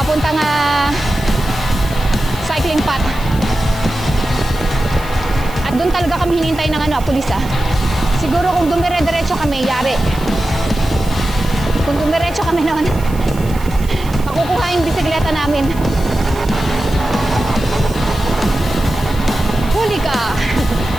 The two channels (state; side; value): noise; right; hiss, 19 dB below the sound